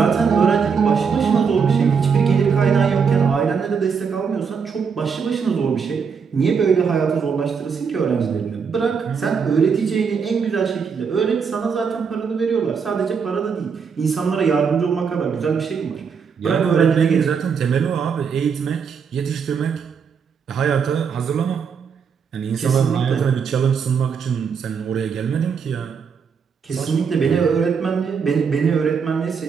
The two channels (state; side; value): quieter; left; 6.2 dB